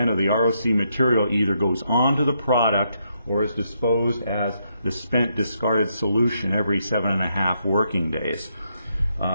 of the ROC material either goes onto the product or is disposed as the spent discarded solution every 7.5 working days.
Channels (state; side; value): inverted; both; correlation -0.78